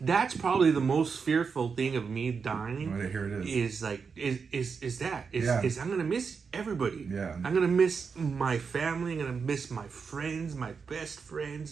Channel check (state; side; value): quieter; left; 5.6 dB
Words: probably the most fearful thing of me dying. Right, here it is. Is I'm gonna miss everybody. Yeah. I'm gonna miss my family. I'm gonna miss my friends, my best